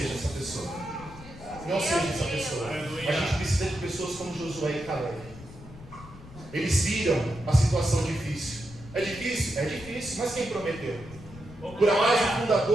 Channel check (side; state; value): left; noise; rumble, 17 dB below the sound